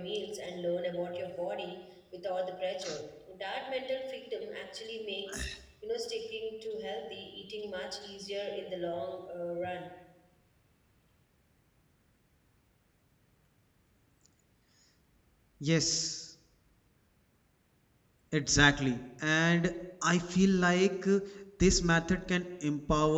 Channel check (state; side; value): identical; both; correlation 1.00